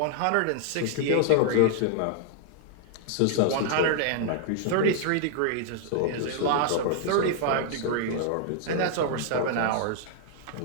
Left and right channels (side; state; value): both; different; correlation -0.01